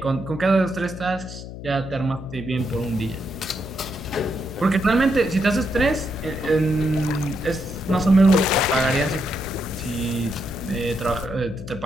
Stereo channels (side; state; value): left; noise; hum, 11 dB below the sound